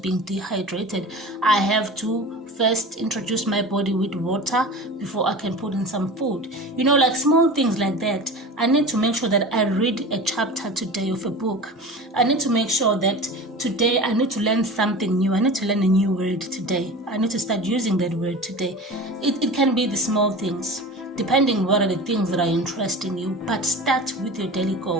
dehydrated. I have to first introduce my body with water before I can put in some food. You know, like small things like that. I need to make sure that I read a chapter today of a book. I need to make sure that today I need to learn something new. I need to learn a new word today. I need to start using that word today. It can be the small things, depending what are the things that are interesting you. But start with your daily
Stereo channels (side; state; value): both; normal; correlation 0.34